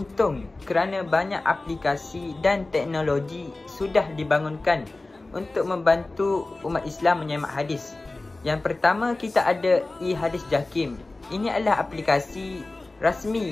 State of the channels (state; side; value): quieter; right; 3.1 dB